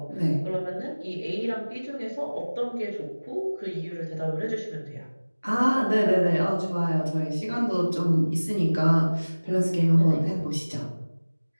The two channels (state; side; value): inverted; both; correlation -1.00